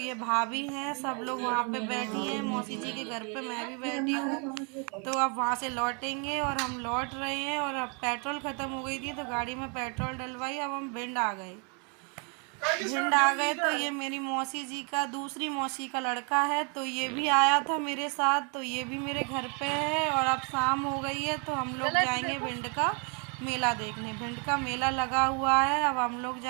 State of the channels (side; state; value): left; quieter; 36.1 dB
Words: भाभी हैं, सब लोग वहाँ पे बैठी हैं मौसी जी के घर पे, मैं भी बैठी हूँ। तो अब वहाँ से लौटेंगे और हम लौट रहे हैं। और अब पेट्रोल ख़त्म हो गई थी तो गाड़ी में पेट्रोल डलवाई। अब हम भिंड आ गए। तो ये मेरी मौसी जी का, दूसरी मौसी का लड़का है, तो ये भी आया था मेरे साथ। तो ये भी मेरे घर पे है। और अब शाम हो गई है तो हम लोग जाएंगे भिंड का मेला देखने। भिंड का मेला लगा हुआ है, अब हम लोग